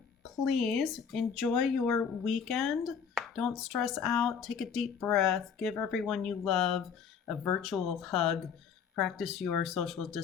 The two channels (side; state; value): right; quieter; 6.8 dB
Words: please enjoy your weekend. Don't stress out. Take a deep breath. Give everyone you love a virtual hug. Practice your social